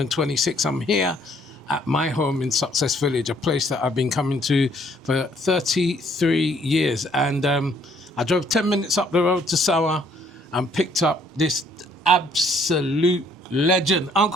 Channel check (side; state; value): both; normal; correlation 0.64